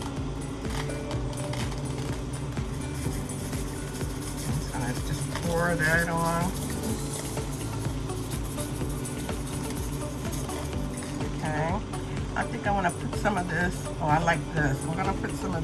I'm going to just pour that on. Okay. I think I want to put some of this. Oh, I like this. I'm going to put some of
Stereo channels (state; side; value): identical; both; correlation 1.00